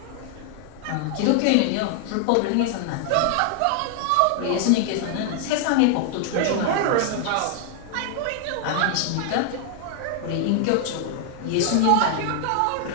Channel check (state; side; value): different; both; correlation 0.00